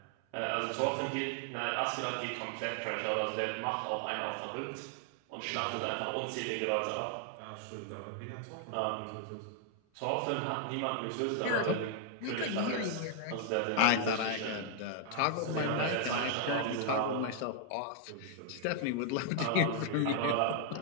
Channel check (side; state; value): both; different; correlation 0.00